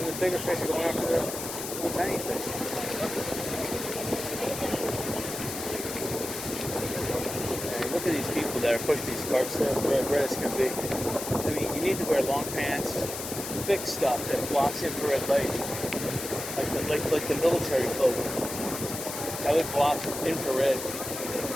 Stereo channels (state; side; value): noise; left; hiss, 7 dB below the sound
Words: the bigger fish are going after the little tiny fish. Look at these people that are pushing these carts. They're red as can be. I mean, you need to wear long pants, thick stuff that blocks infrared light, like the military cloak. That would block infrared.